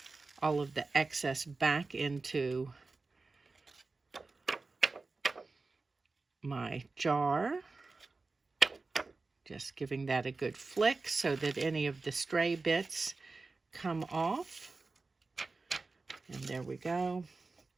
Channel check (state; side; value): quieter; left; 3.8 dB